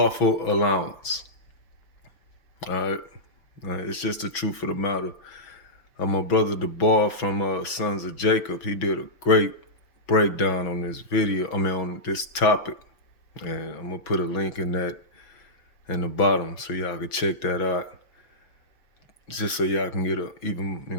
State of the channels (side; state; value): right; late; 6.1 ms